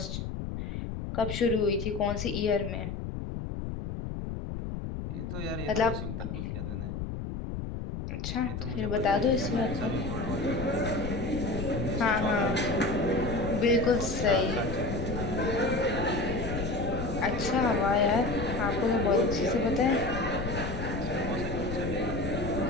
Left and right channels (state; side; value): noise; left; rumble, 5 dB below the sound